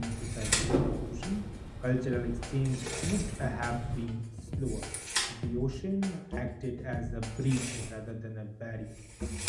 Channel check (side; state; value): both; identical; correlation 1.00